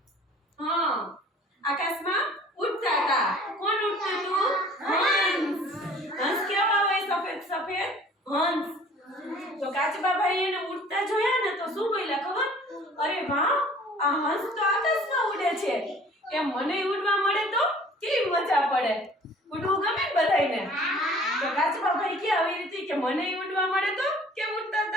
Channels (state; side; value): normal; both; correlation 0.50